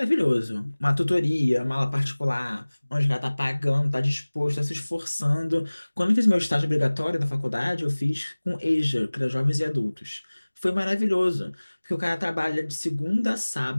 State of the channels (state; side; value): inverted; both; correlation -1.00